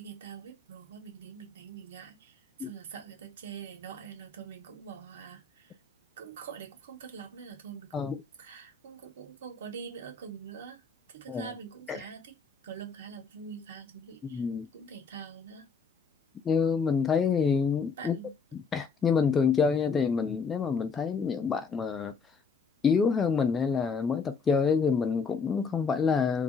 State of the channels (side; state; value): right; quieter; 5.2 dB